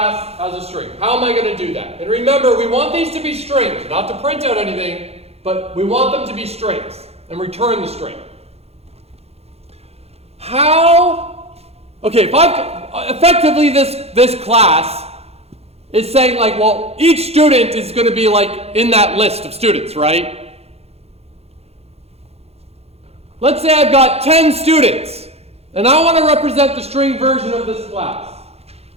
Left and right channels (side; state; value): left; late; 0.30 ms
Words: as a string. How am I going to do that? And remember, we want these to be strings, not to print out anything, but we want them to be strings and return the string. Okay, if effectively this class is saying like, well, each student is going to be like in that list of students, right? Let's say I've got 10 students, and I want to represent the string version of this class,